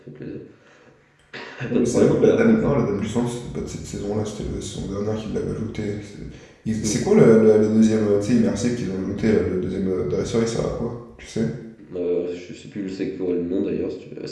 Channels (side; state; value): both; identical; correlation 1.00